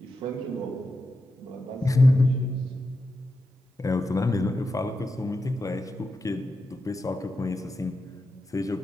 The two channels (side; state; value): both; normal; correlation 0.88